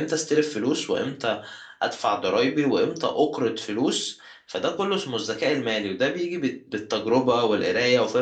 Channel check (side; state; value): both; identical; correlation 1.00